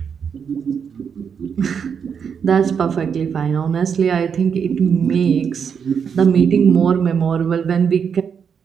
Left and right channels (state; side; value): quieter; left; 6.9 dB